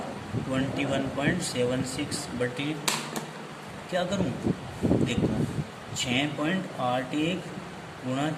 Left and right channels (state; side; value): identical; both; correlation 1.00